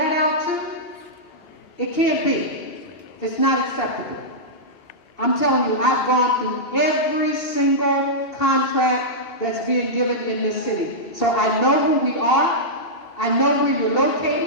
out too? It can't be. It's not acceptable. I'm telling you, I've gone through every single contract that's being given in this city. So I know who we are, I know where you're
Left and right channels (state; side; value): late; right; 2.8 ms